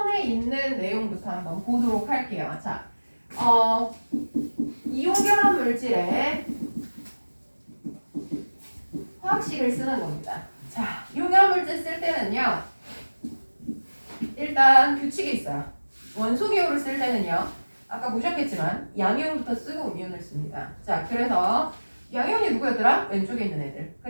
있는 내용부터 한번 보도록 할게요. 자, 이온결합 물질에 화학식을 쓰는 겁니다. 자, 이온결합 물질 쓸 때는요. 일단 규칙이 있어요. 원소기호를 쓸 때는요. 아까 보셨겠지만 양이온부터 쓰고 음이온을 씁니다. 자, 그래서 양이온이 누구였더라? 왼쪽에 있는 애들.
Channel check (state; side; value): inverted; both; correlation -1.00